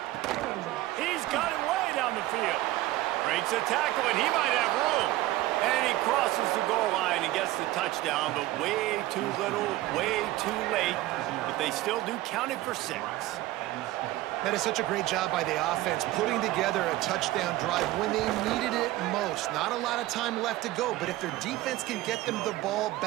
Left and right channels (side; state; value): left; quieter; 16.7 dB